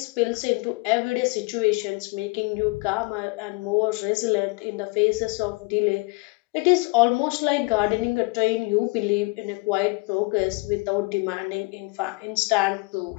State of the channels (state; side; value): quieter; right; 27.0 dB